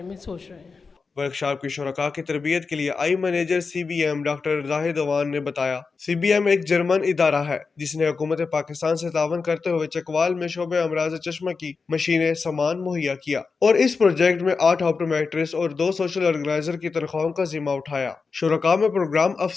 میں سوچ رہے ہیں۔ ورکشاپ کی شرکاء کی تربیت کے لیے آئی مینیجر CBM ڈاکٹر زاہد اوان نے بتایا CBM ایک جرمن ادارہ ہے جس نے حکومت پاکستان سے تعاون کرتے ہوئے چکوال میں شعبہ امراض چشمہ کی مشینیں سامان مہیا کیا، اور اس پروجیکٹ میں 8 آپٹومیٹرسٹ اور 2 سوشل آرگنائزر کی تنخواہوں کا ذمہ اٹھایا۔ شرکاء میں پروگرام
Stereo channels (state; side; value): quieter; right; 4.7 dB